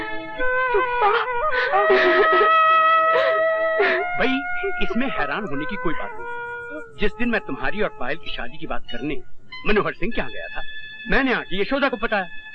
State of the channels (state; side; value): identical; both; correlation 1.00